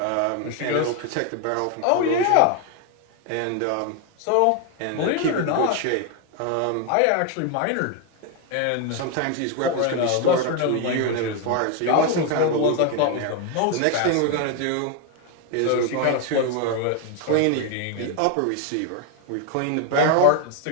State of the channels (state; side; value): different; both; correlation 0.01